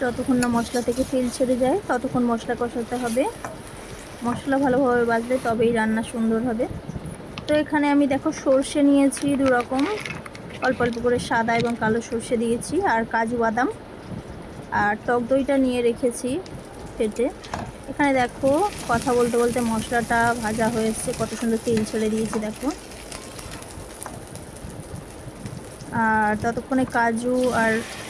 যতক্ষণ না মশলা থেকে তেল ছেড়ে যায় ততক্ষণ মশলা কষাতে হবে। মশলা ভালোভাবে বাজলে তবেই রান্না সুন্দর হবে। তো এখানে আমি দেখো সর্ষে নিয়েছি দু রকম, অল্প অল্প করে সাদা এবং কালো সর্ষে দিয়েছি, আর কাজু বাদাম আর টক দইটা নিয়ে রেখেছি ফেটে। এখানে দেখো কথা বলতে বলতে মশলাটা ভাজা হয়েছে, কত সুন্দর তেল ছেড়ে দিয়েছি দেখো। আর ততক্ষণে কাজু আর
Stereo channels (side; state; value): both; identical; correlation 1.00